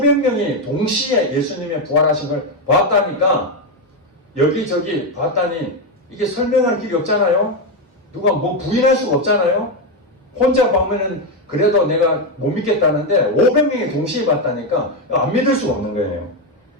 동시에 예수님의 부활하신 걸 봤다니까 여기저기 봤다니 이게 설명할 길이 없잖아요. 누가 뭐 부인할 수가 없잖아요. 혼자 보면은 그래도 내가 못 믿겠다는데 500명이 동시에 봤다니까 안 믿을 수가 없는 거예요.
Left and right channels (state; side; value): normal; both; correlation 0.08